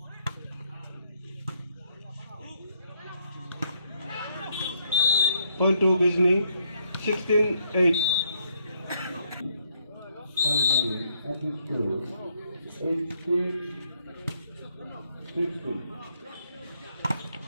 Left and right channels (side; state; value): both; inverted; correlation -0.72